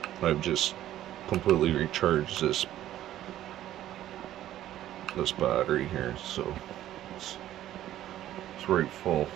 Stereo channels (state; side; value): quieter; left; 12.9 dB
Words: I've just completely recharged this battery here, so it's right full.